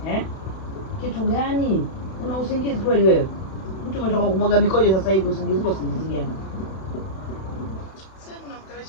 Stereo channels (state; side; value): late; right; 32 ms